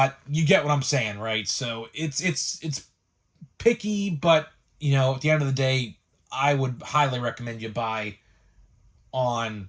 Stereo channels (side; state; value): both; identical; correlation 1.00